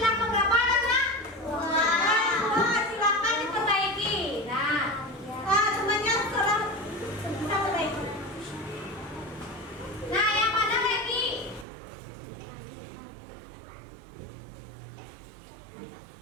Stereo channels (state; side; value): drops out; left; at 11.7 s